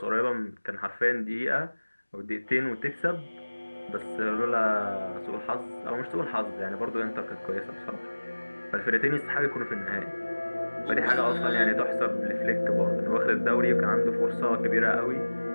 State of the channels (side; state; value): both; inverted; correlation -1.00